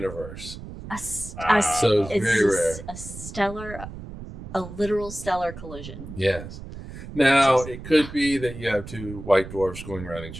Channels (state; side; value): noise; right; rumble, 12 dB below the sound